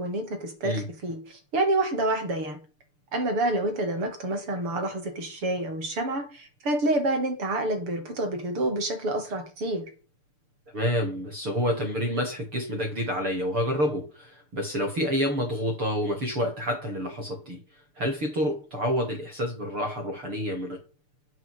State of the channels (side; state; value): left; late; 6.8 ms